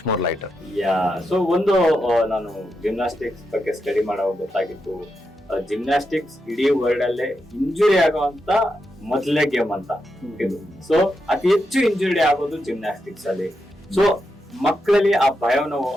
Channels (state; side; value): normal; both; correlation 0.85